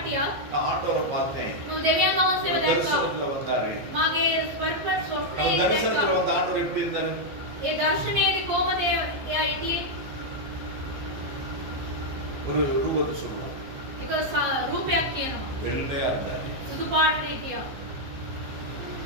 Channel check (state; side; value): late; left; 15 ms